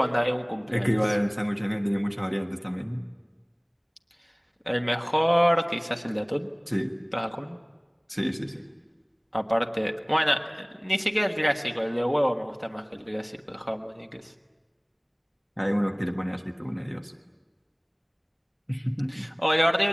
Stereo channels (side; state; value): both; identical; correlation 1.00